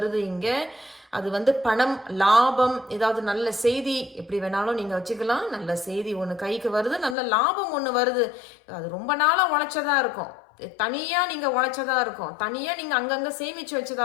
இங்கே. அது வந்து பணம், லாபம், ஏதாவது நல்ல செய்தி எப்படி வேணாலும் நீங்கள் வச்சுக்கலாம். நல்ல செய்தி ஒன்று கைக்கு வருது, நல்ல லாபம் ஒன்று வருது. அது ரொம்ப நாளாக உழைச்சதா இருக்கும், தனியாக நீங்கள் உழைச்சதா இருக்கும், தனியாக நீங்கள் அங்கங்கே சேமித்து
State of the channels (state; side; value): drops out; right; at 7.2 s